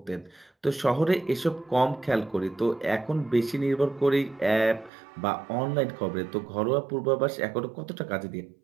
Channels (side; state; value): left; drops out; at 4.9 s